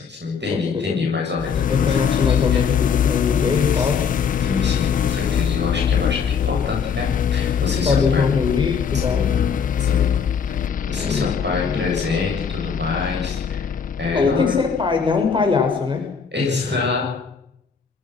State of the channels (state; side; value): quieter; right; 6.3 dB